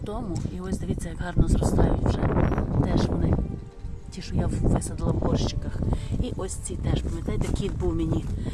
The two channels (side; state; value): both; identical; correlation 1.00